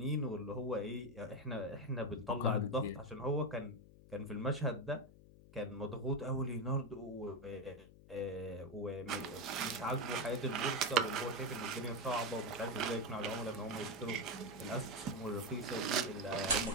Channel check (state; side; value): noise; left; hum, 20 dB below the sound